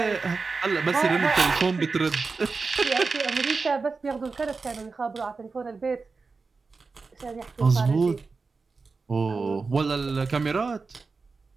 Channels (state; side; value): quieter; left; 4.3 dB